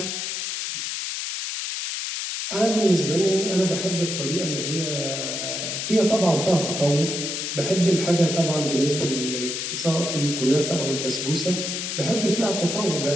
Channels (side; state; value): left; noise; hiss, 3 dB below the sound